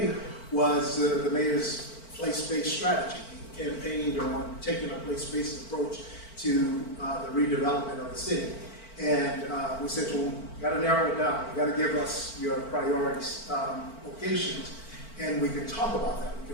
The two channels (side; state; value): right; late; 4.5 ms